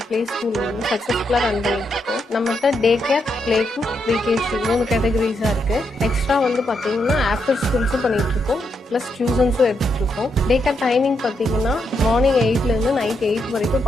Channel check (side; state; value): both; normal; correlation 0.80